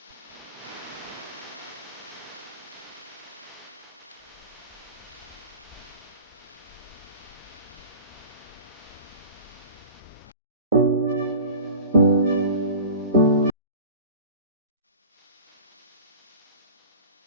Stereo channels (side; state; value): both; inverted; correlation -0.39